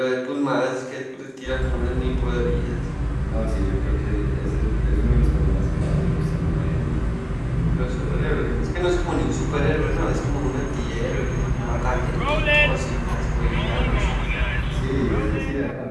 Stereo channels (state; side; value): identical; both; correlation 1.00